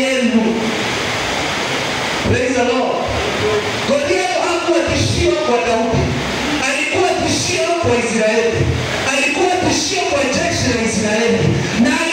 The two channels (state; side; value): identical; both; correlation 1.00